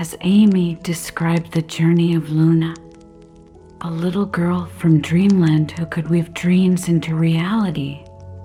Amy described the journey of Luna, a little girl from Dreamland who could weave dreams into reality,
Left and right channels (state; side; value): identical; both; correlation 1.00